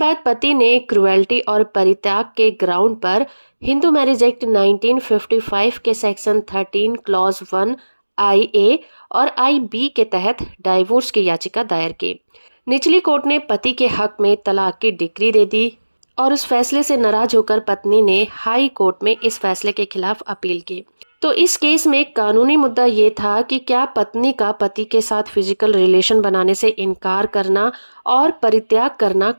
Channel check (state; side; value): inverted; both; correlation -1.00